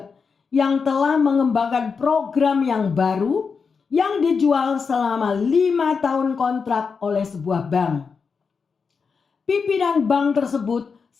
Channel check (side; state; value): right; quieter; 5.4 dB